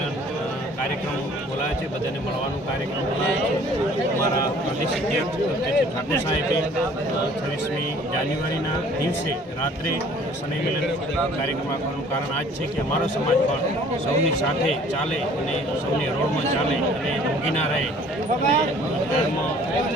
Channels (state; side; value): normal; both; correlation 0.53